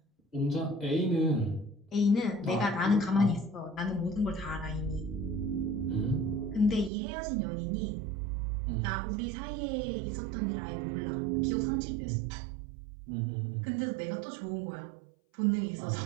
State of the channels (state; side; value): drops out; left; at 6.9 s